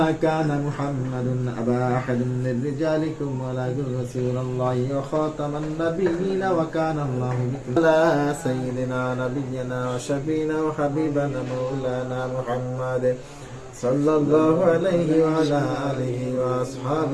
كان محمد أبا أحد من رجالكم ولكن رسول الله وخاتم النبيين وكان الله بكم على سيدنا نبينا وشفينا وحبيبنا مولانا محمد صلى الله عليه وعلى آله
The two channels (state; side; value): identical; both; correlation 1.00